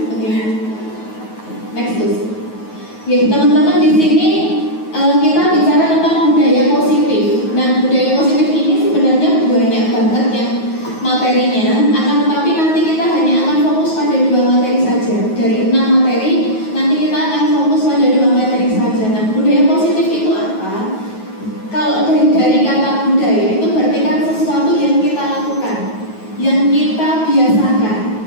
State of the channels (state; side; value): late; right; 9.3 ms